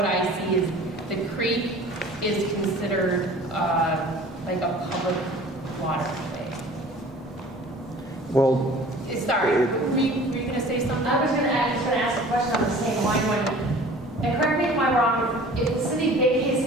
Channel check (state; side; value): normal; both; correlation 0.46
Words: I see is the creek is considered like a public waterway. Well, Sorry, were you going to say something? I was just going to ask a question on the same line. And correct me if I'm wrong, if the city vacates